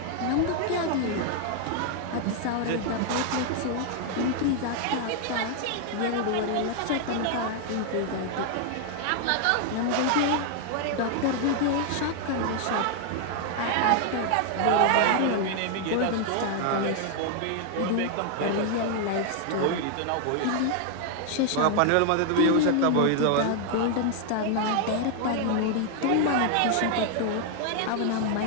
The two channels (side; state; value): both; different; correlation 0.00